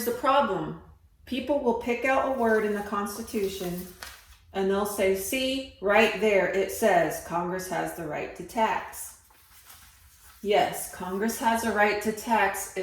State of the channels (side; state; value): both; identical; correlation 1.00